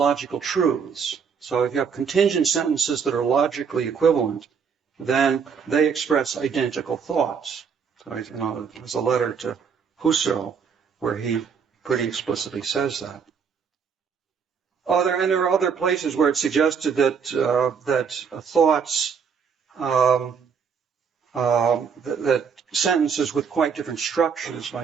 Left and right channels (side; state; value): left; quieter; 6.4 dB